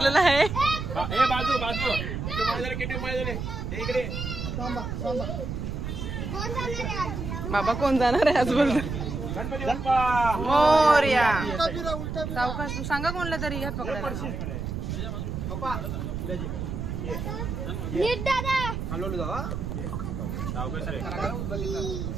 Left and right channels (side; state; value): right; noise; rumble, 4 dB below the sound